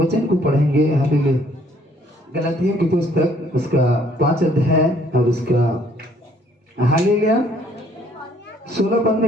को पढ़ेंगे हालेलुया, गलातियों की पुस्तक उसका 5 अध्याय और उसका हालेलुया 16 पद में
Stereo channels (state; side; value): normal; both; correlation 0.62